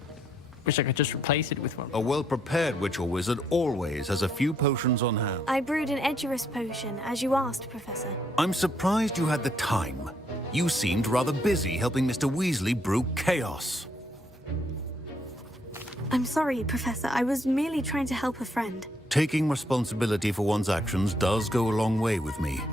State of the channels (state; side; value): normal; both; correlation 0.71